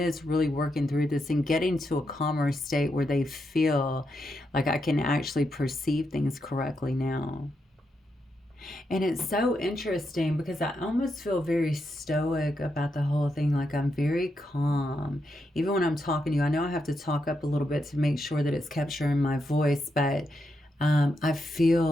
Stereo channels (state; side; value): normal; both; correlation 0.83